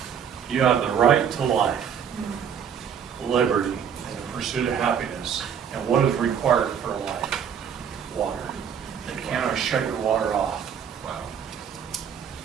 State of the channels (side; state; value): left; quieter; 7.9 dB